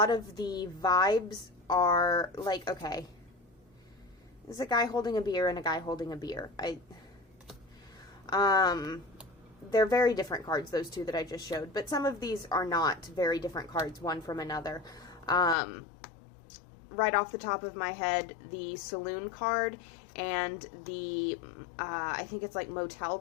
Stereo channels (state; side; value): drops out; right; at 15.6 s